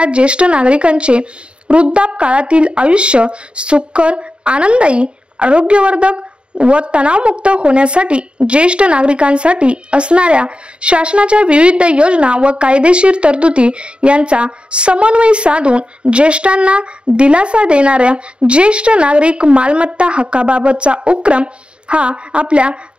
ज्येष्ठ नागरिकांचे वृद्धापकाळातील आयुष्य सुखकर, आनंददायी, आरोग्यवर्धक व तणावमुक्त होण्यासाठी ज्येष्ठ नागरिकांसाठी असणाऱ्या शासनाच्या विविध योजना व कायदेशीर तरतुदी यांचा समन्वय साधून ज्येष्ठांना दिलासा देणाऱ्या ज्येष्ठ नागरिक मालमत्ता हक्काबाबतचा उपक्रम हा आपल्या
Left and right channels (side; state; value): left; late; 0.055 ms